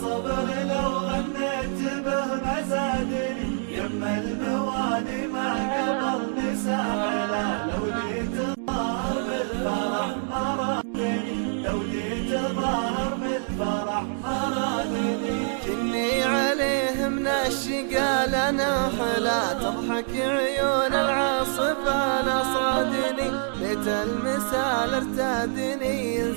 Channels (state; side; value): silent; left; digital silence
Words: لو غنيت به ما زادني، يما الموالي ما قبلني ساحلة، لو جيت ظاهر بالفرح ما رادني، لو جيت ظاهر بالفرح ما رادني. كني عليه من الشقا لنا حلا، تضحك عيون العاصفة نصادني، بيت المثال ارتادني